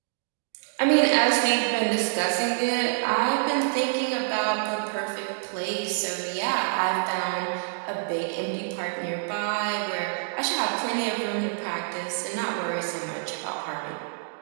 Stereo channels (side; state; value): left; silent; digital silence